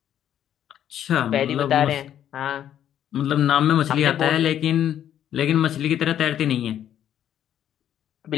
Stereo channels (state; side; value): quieter; right; 10.5 dB